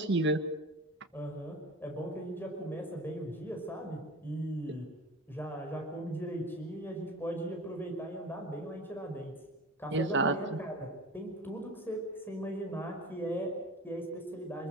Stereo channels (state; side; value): normal; both; correlation 0.34